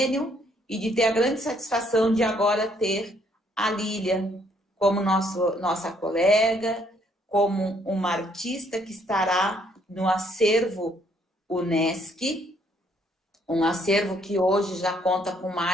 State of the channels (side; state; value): both; normal; correlation 0.67